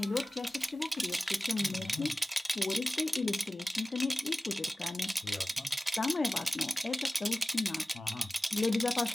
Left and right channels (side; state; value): both; normal; correlation 0.96